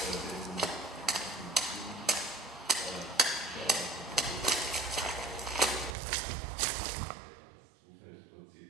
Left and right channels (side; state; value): left; drops out; at 6.0 s